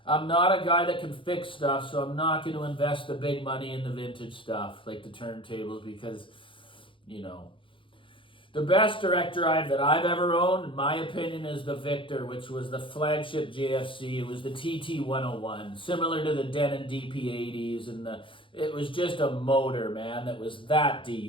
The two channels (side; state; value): right; late; 0.25 ms